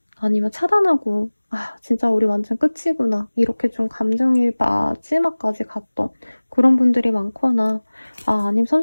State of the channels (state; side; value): inverted; both; correlation -1.00